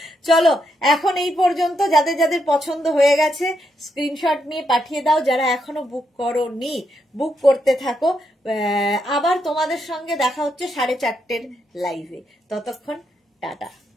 চলো এখন এই পর্যন্ত, যাদের যাদের পছন্দ হয়ে গেছে স্ক্রিনশট নিয়ে পাঠিয়ে দাও, যারা এখনো বুক করোনি বুক করতে থাকো। আবার তোমাদের সঙ্গে দেখা হচ্ছে 4:30 লাইভে, ততক্ষণ টাটা।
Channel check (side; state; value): both; normal; correlation 0.80